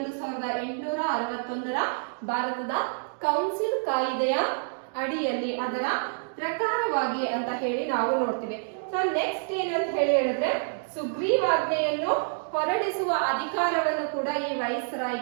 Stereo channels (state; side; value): silent; left; digital silence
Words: 1861ರ ಭಾರತದ ಕೌನ್ಸಿಲ್ ಕಾಯ್ದೆಯ ಅಡಿಯಲ್ಲಿ ಅದರ ಪ್ರಕಾರವಾಗಿ ಅಂತ ಹೇಳಿ ನಾವು ನೋಡ್ತೀವಿ. ಸೊ ನೆಕ್ಸ್ಟ್ ಏನಂತ ಹೇಳಿ ಹೇಳಿದ್ರೆ ಸುಗ್ರೀವಾಜ್ಞೆಯನ್ನು ಹೊರಡಿಸುವ ಅಧಿಕಾರವನ್ನು ಕೂಡ ಈ